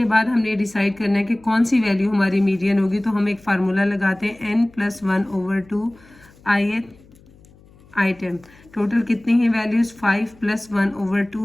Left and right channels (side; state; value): left; noise; hum, 27 dB below the sound